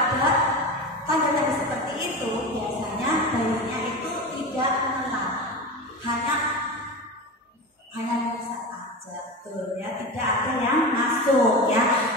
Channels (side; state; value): both; normal; correlation 0.25